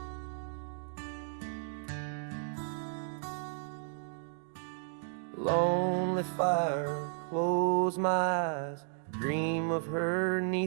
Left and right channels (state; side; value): silent; left; digital silence